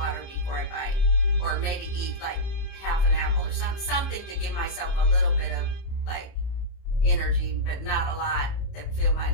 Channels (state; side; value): late; right; 30 ms